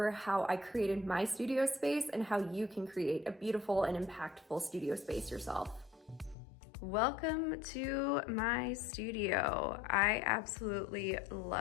how I created my studio space and how you can create a beautiful and impactful studio space yourself. Welcome to my studio. I absolutely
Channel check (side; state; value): right; drops out; at 6.4 s